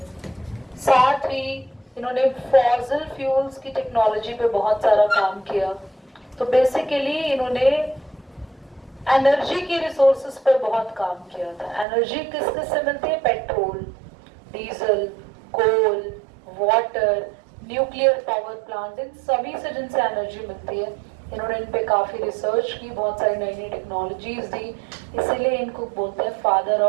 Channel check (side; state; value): left; drops out; at 11.9 s